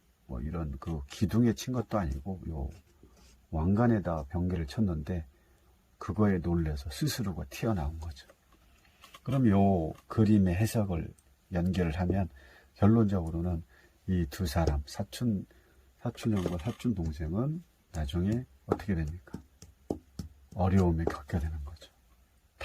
그 기둥에 친 것도 아니고 왕관에다 번개를 쳤는데 그거에 놀래서 스스로가 튀어나온 거죠. 그럼 요 그림의 해석을 연결을 하면 결론적으로는 이 두 사람, 사촌 사촌 형과 사촌 동생은 나중에 어떻게 됩니까? 어려움에 겪게 되는 거죠.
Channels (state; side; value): identical; both; correlation 1.00